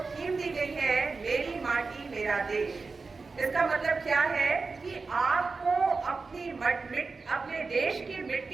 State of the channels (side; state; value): left; quieter; 4.2 dB